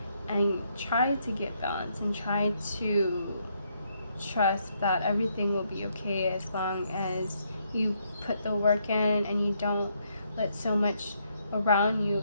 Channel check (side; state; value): both; inverted; correlation -0.74